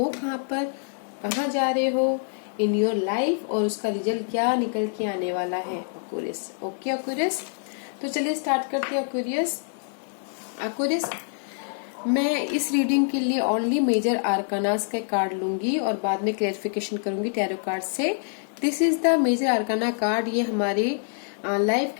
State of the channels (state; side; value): silent; right; 60 dB below the other